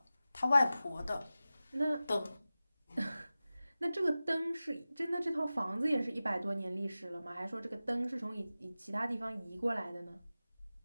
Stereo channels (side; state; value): both; inverted; correlation -0.95